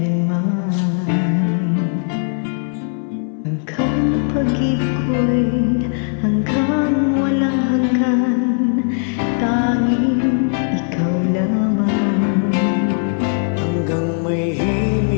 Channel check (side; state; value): right; silent; 57 dB below the other